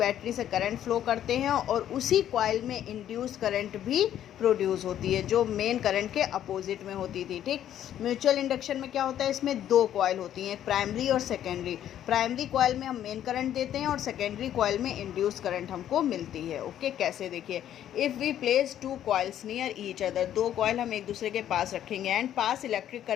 से करंट फ्लो करते हैं और उसी कॉइल में इंड्यूस करंट भी प्रोड्यूस होती है जो मेन करंट के अपोजिट में होती थी। ठीक, म्यूचुअल इंडक्शन में क्या होता है, इसमें दो कॉइल होती हैं, प्राइमरी और सेकेंडरी। प्राइमरी कॉइल में हम मेन करंट देते हैं और सेकेंडरी कॉइल में इंड्यूस करंट हमको मिलती है। ओके, कैसे? देखिए, if we place two coils near each other, दो कॉइल हम एक दूसरे के पास रखेंगे, and pass electric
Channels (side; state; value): right; quieter; 11.0 dB